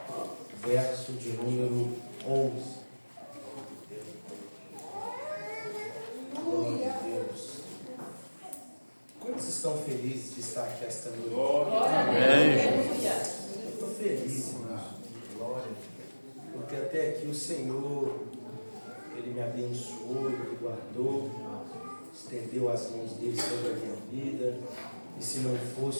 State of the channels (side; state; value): both; inverted; correlation -1.00